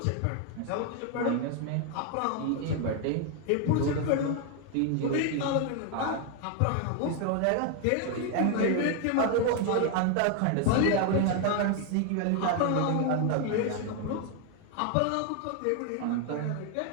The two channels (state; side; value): different; both; correlation 0.00